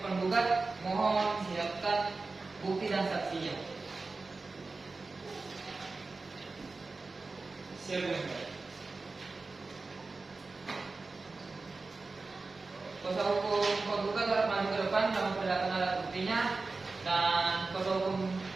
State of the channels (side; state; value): left; quieter; 3.8 dB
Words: penggugat. Mohon siapkan bukti dan saksinya. Siap, Yang Mulia. Kuasa hukum penggugat dapat maju ke depan dalam memperlihatkan alat buktinya, dan kuasa hukum